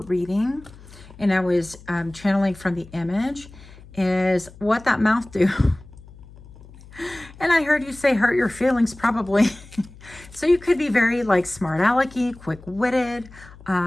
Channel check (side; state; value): left; noise; hum, 20 dB below the sound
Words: reading, and I was channeling from the image, is what that mouth do. And I heard you say hurt your feelings, probably. So you could be very like smart alecky, quick-witted,